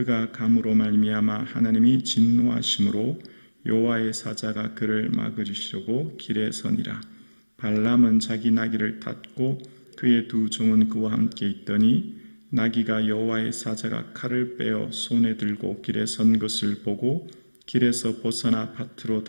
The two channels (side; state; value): both; inverted; correlation -1.00